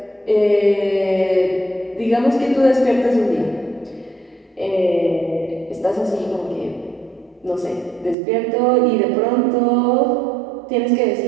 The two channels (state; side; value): drops out; left; at 8.2 s